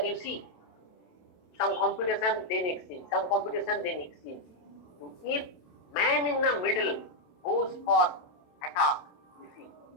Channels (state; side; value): late; right; 27 ms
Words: you see some computation then exchange, some computation then exchange. So if man in the middle goes for attack, you see,